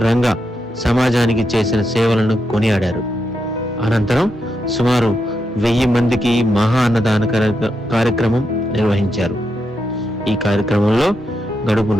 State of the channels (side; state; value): both; normal; correlation 0.84